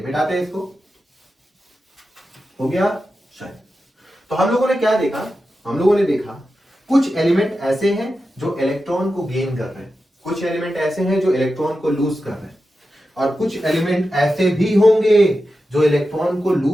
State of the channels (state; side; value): normal; both; correlation 0.91